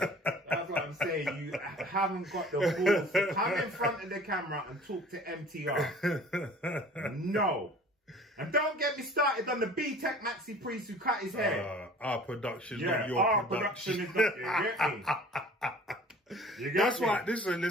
That's what I'm saying. You haven't got the balls to come in front of the camera and talk to MTR. No. And don't get me started on the B-Tech Maxi Priest who cut his hair. Our production, not your our production. is not, you get me? That's why,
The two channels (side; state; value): both; normal; correlation 0.47